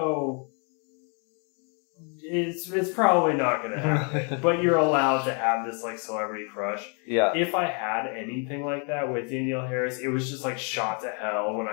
it's probably not going to happen, but you're allowed to have this like celebrity crush. Yeah. If I had anything like that with Danielle Harris, it was just like shot to hell when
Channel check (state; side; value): quieter; right; 38.7 dB